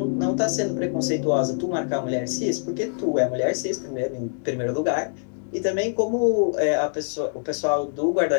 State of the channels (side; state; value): right; silent; digital silence